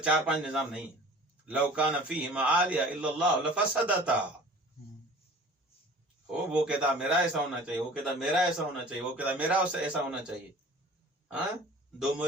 4-5 نظام نہیں ہے. لو کان فیہما آلیہ الا اللہ لفسدتا. وہ کہتا میرا ایسا ہونا چاہیے، وہ کہتا میرا ایسا ہونا چاہیے، وہ کہتا میرا ایسا ہونا چاہیے. ہاں، 2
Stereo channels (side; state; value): both; normal; correlation 0.44